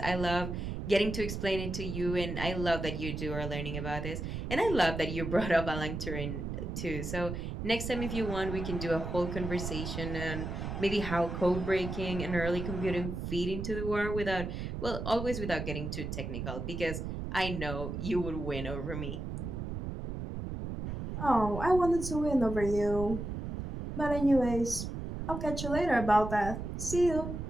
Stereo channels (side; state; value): right; noise; rumble, 5 dB below the sound